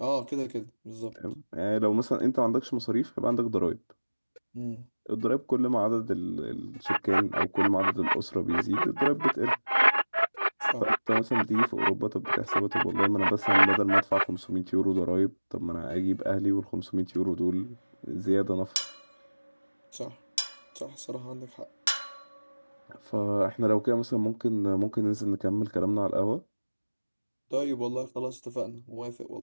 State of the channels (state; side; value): inverted; both; correlation -1.00